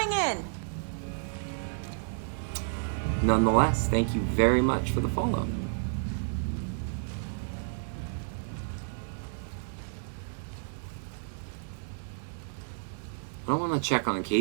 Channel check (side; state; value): left; silent; digital silence